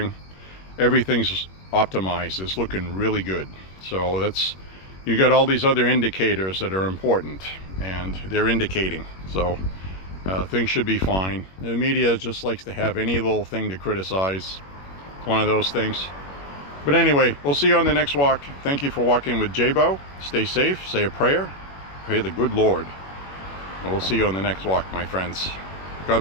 Everything's optimized. It's looking really good. So that's, you got all these other indicators that are important, and they're indicating. So things should be fine. The media just likes to have any little thing to criticize. It's one of those things. But anyway, we'll see you on the next walk. Thank you for walking with J.Beau. Stay safe, say a prayer, pray the good Lord. And we'll see you on the next walk, my friends.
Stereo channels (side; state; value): right; late; 21 ms